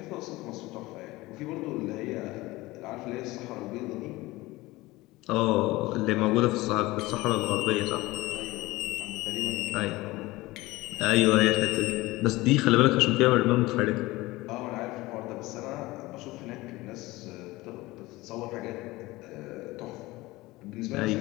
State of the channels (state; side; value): quieter; right; 20.0 dB